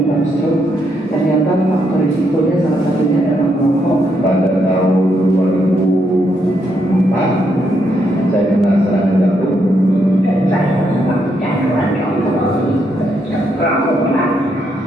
stroke. Ternyata faktor risikonya salah satunya adalah merokok. Pada tahun 2004 saya kena serangan jantung. Saya sangat gangguan rokok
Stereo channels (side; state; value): both; normal; correlation 0.77